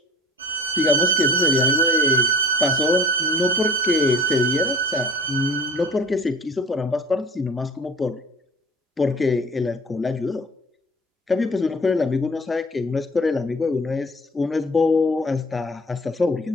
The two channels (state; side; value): normal; both; correlation 0.45